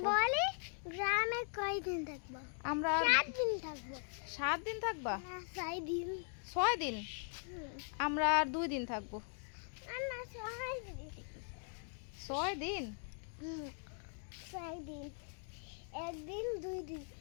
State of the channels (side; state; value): right; silent; 51 dB below the other